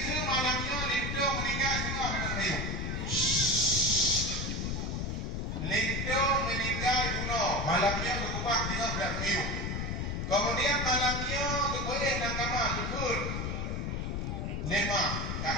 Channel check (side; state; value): left; noise; rumble, 2 dB below the sound